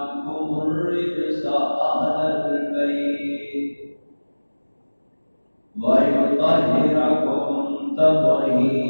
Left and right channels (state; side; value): inverted; both; correlation -1.00